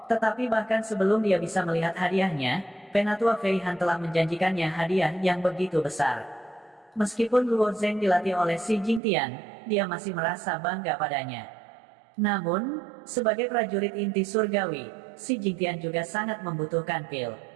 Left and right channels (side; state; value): left; drops out; at 9.0 s